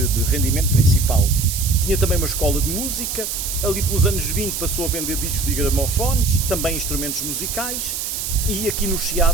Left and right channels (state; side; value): noise; right; hiss, 4 dB below the sound